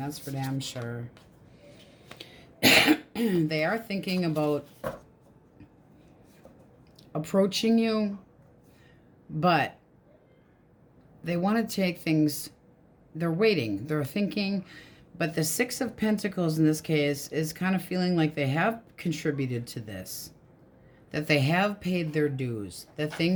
for damn sure. They are thinking about approaching you, but they want to take things, they're waiting, they're thinking. But the Six of Pentacles in this case is kind of feeling like they have contributed to this, that they have paid their dues, that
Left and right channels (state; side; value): identical; both; correlation 1.00